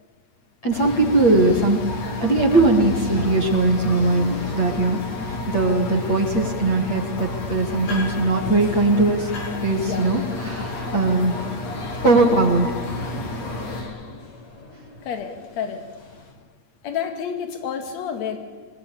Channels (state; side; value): late; right; 8.6 ms